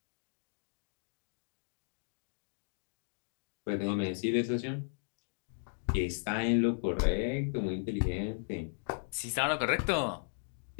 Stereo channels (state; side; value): silent; right; digital silence